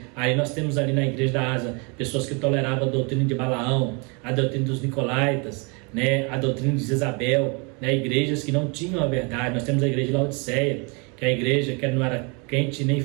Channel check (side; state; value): left; quieter; 32.2 dB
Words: Aí nós temos ali na igreja da Ásia pessoas que toleravam a doutrina de Balaão, a doutrina dos Nicolaítas, né, a doutrina de Jezabel, né, igrejas que não tinham a verdade. Nós temos a igreja de Laodiceia, que é a igreja que não era quente nem